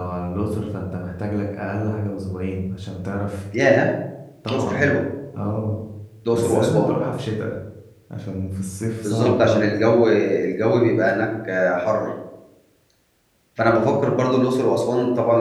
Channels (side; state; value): both; identical; correlation 1.00